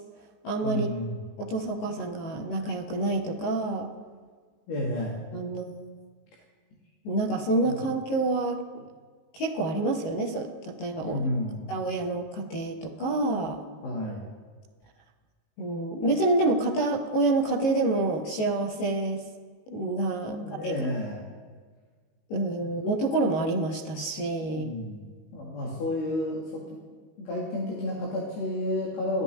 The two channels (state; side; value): late; right; 18 ms